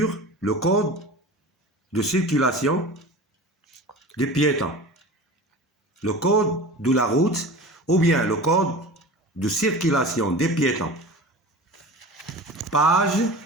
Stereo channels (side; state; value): both; normal; correlation 0.35